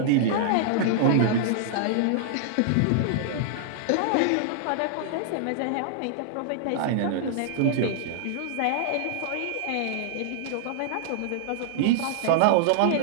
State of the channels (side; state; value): both; different; correlation -0.01